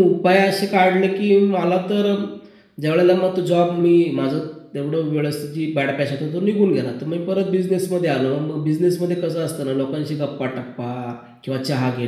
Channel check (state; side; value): identical; both; correlation 1.00